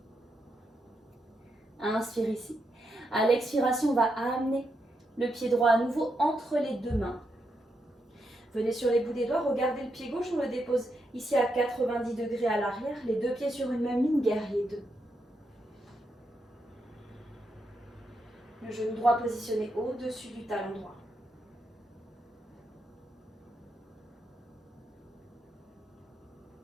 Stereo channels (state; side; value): normal; both; correlation 0.82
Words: Inspire ici. À l'expiration, on va amener le pied droit à nouveau entre les deux mains. Venez sur les bouts des doigts, regardez le pied gauche, on le dépose ici à 90 degrés à l'arrière. Les deux pieds sur une même ligne, guerrier 2. Le genou droit positionné au-dessus du talon droit.